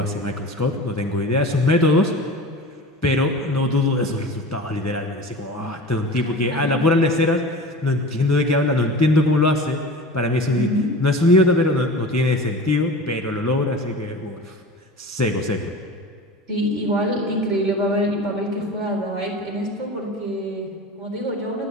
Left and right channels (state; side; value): normal; both; correlation 0.35